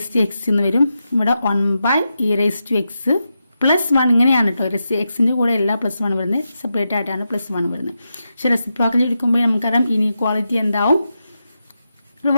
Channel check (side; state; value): both; inverted; correlation -0.87